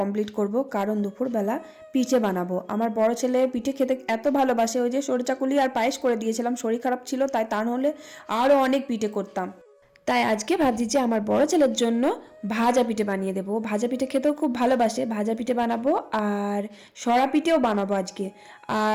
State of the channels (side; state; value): both; identical; correlation 1.00